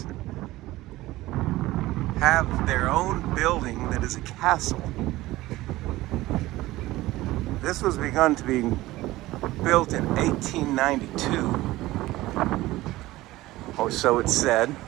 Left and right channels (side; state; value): left; quieter; 17.7 dB